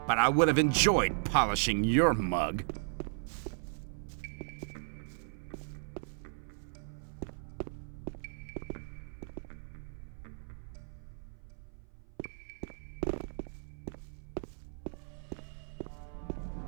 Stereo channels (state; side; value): silent; left; 54 dB below the other